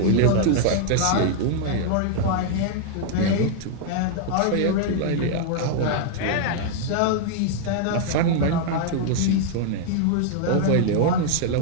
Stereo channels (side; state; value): both; different; correlation -0.01